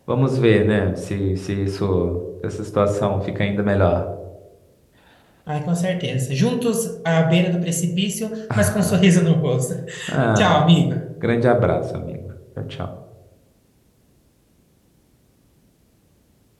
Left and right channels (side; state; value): both; identical; correlation 1.00